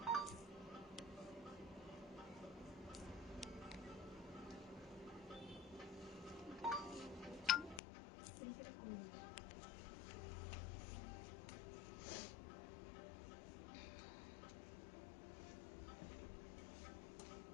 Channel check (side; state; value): right; drops out; at 7.8 s